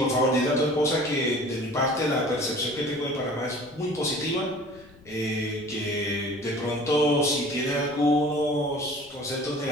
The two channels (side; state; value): left; noise; rumble, 25 dB below the sound